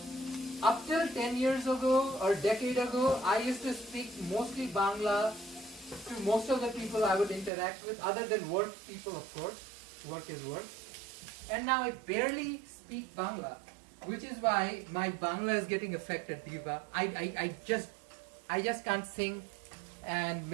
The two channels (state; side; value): drops out; left; at 7.5 s